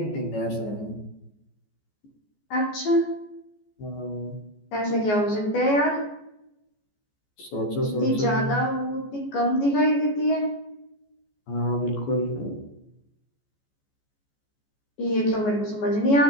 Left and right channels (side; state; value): right; late; 14 ms